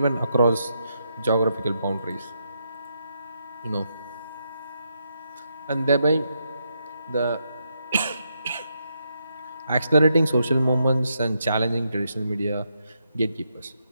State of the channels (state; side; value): inverted; both; correlation -0.81